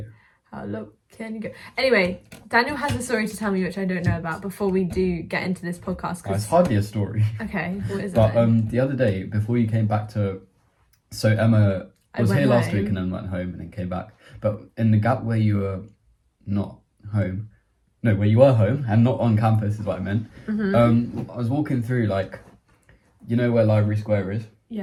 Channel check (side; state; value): both; identical; correlation 1.00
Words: How low can you go? Anyway, Daniel has a story to tell me which I don't know about before we do get into this podcast. It's hardly a story. Okay, what is But it? the other day, before you came back to... So Emma was went here last week home. and then went home and then came back. But in the gap where you were not home... No, where you were home and not on campus is what I meant. Mm-hmm. I was walking through, like... You know where Library Square is?